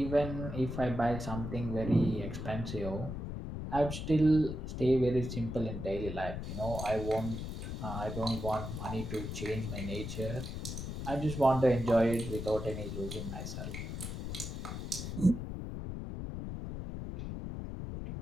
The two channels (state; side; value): noise; left; rumble, 5 dB below the sound